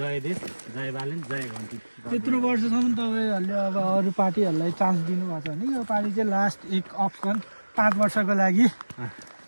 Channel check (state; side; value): inverted; both; correlation -1.00